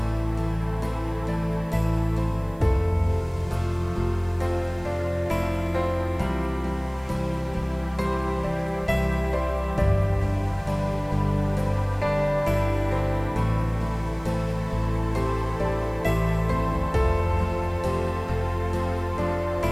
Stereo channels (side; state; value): right; noise; hiss, 30 dB below the sound